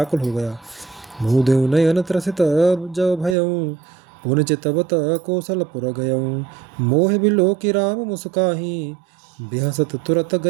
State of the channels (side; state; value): left; drops out; at 3.4 s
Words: हो गया। मुँह देव नयन त्रसित जब भयऊँ, पुन चितवत कौशलपुर गयऊँ। मोह बिलो की राम मुस्काही, बेहसत तुरत